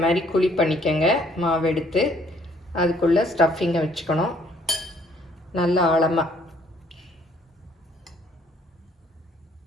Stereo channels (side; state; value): both; normal; correlation 0.63